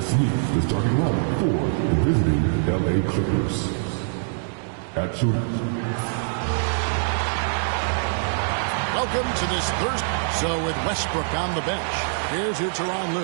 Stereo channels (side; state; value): left; silent; digital silence